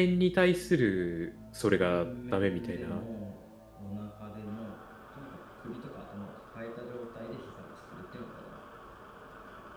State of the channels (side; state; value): both; identical; correlation 1.00